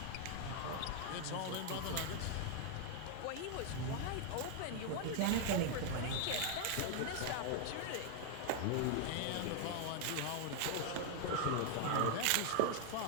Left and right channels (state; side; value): different; both; correlation 0.00